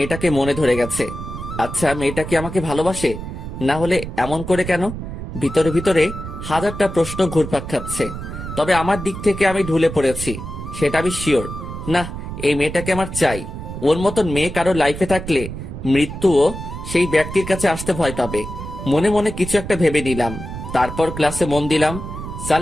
মনে ধরে গেছে। আচ্ছা, মেয়েটা কি আমাকে ভালোবাসে? না হলে এমন করে কেন? ভিতরে ভিতরে হাজারটা প্রশ্ন ঘুরপাক খাচ্ছে। তবে আমার দিক থেকে আমি ঢুলে পড়েছি, সেটা আমি শিওর। না, এই মেয়েটাকে আমার চাই। ওর মতন মেয়ে কারো লাইফে থাকলে মৃত্যুও সেই ব্যক্তির কাছে আসতে ভয় পাবে। মনে মনে কিছু একটা ভেবে নিলাম। তারপর ক্লাসে মন দিলাম।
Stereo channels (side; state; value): right; noise; rumble, 8 dB below the sound